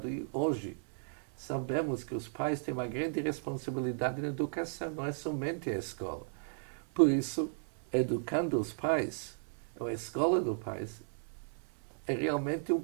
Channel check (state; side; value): silent; left; 54 dB below the other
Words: E hoje sabemos que os pais têm uma grande responsabilidade na educação, não é somente a escola. Por isso, educando os pais, a Escola dos Pais, é realmente um